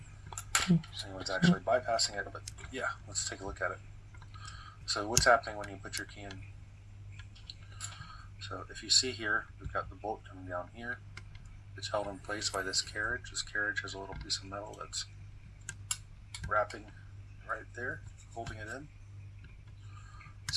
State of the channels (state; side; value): identical; both; correlation 1.00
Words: think anyone's actually bypassing it, but yeah, let's take a look at it. So what's happening when you put your key in? So if you see here, we've got the bolt coming down here. It's held in place by this carriage. This carriage has a little piece of metal that's wrapping right there, holding it in.